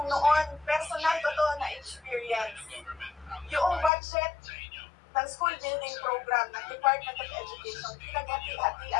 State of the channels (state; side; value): drops out; right; at 3.9 s